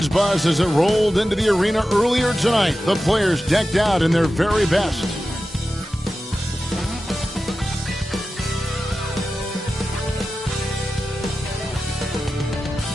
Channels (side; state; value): both; normal; correlation 0.93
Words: buzz as it rolled into the arena earlier tonight. The players decked out in their very best.